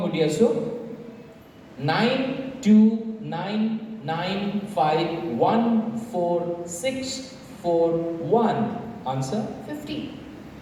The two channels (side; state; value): both; identical; correlation 1.00